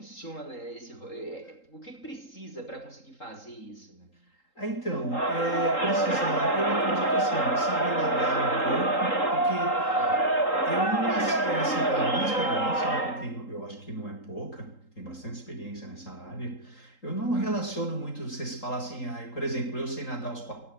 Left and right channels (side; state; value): right; late; 3.8 ms